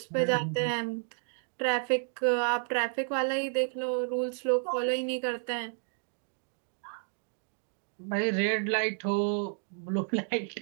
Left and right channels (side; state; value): left; silent; 57 dB below the other